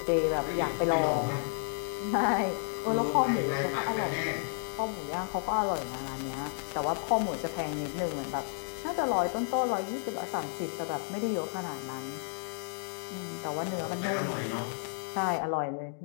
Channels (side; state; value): right; silent; digital silence